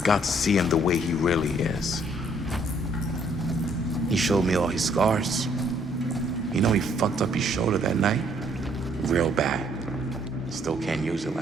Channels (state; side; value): normal; both; correlation 0.65